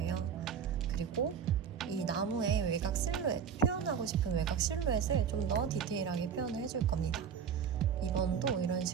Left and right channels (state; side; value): quieter; left; 7.5 dB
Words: 그리고 이 나무의 외곽 실루엣, 표현하고 싶은 외곽 실루엣을 좀 더 디테일하게 표현을 해줄 겁니다. 이번도 이런